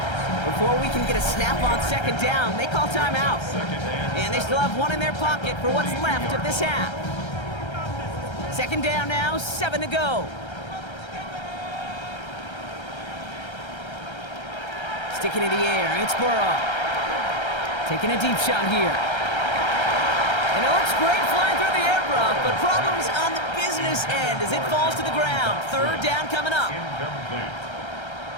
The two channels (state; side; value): late; right; 1.3 ms